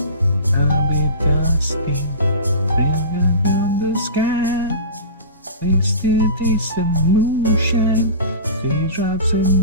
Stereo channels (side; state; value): both; inverted; correlation -0.33